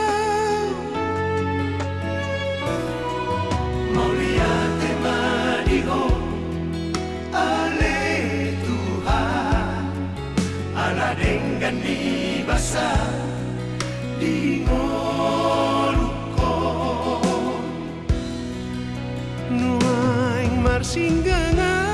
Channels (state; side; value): identical; both; correlation 1.00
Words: dengan di basah di ngolukon nuaing